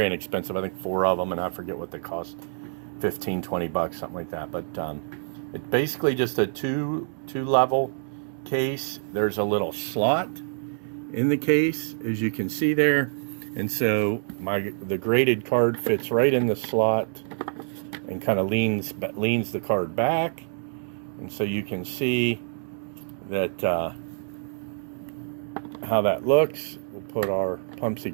inexpensive. I think 4 of them, and I forget what they cost, 15, 20 bucks, something like that. But it's basically just a two level case. There's a little slot in the case, as you can see there, and so the graded card fits right in the slot and kind of leans the card back, and so you can see that how that looks. We'll put our Pumpsy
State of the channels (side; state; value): left; silent; digital silence